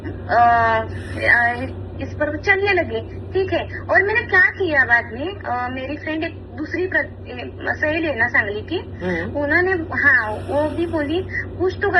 इस पर चलने लगी, ठीक है। और मैंने क्या किया बाद में, मेरी फ्रेंड एक दूसरी सहेली है ना सांगली की, उन्होंने हाँ वो भी बोली कुछ तो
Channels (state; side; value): identical; both; correlation 1.00